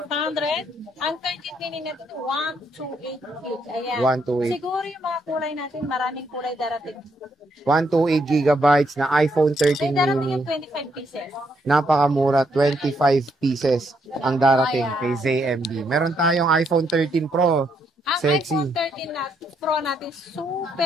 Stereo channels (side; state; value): both; normal; correlation 0.75